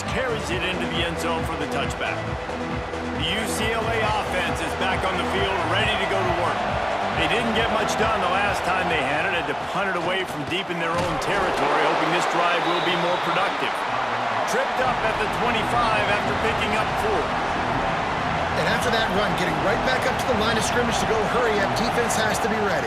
carries it into the end zone for the touchback. The UCLA offense is back on the field, ready to go to work. They didn't get much done the last time they had it, had to punt it away from deep in their own territory, hoping this drive will be more productive. Tripped up at the 25 after picking up 4. And after that run, getting right back up to the line of scrimmage to go hurry up, defense has to be ready.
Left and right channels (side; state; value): both; identical; correlation 1.00